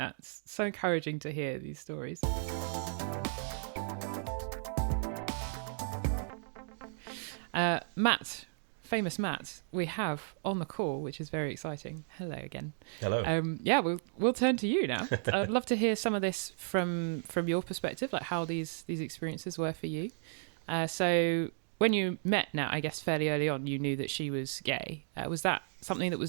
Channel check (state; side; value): silent; left; digital silence